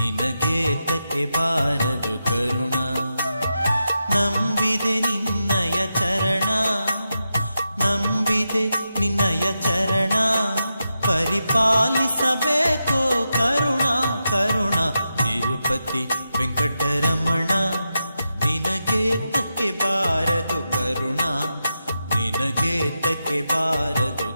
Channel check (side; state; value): both; inverted; correlation -0.88